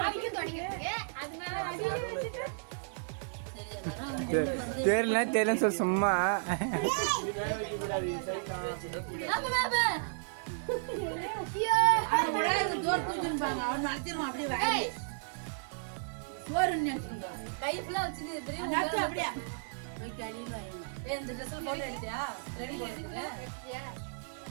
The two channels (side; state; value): left; silent; digital silence